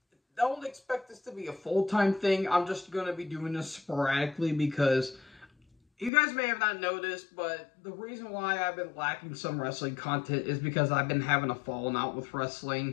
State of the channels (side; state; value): right; drops out; at 6.1 s